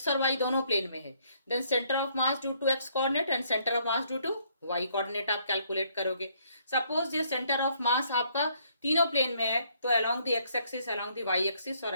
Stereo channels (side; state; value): both; inverted; correlation -0.67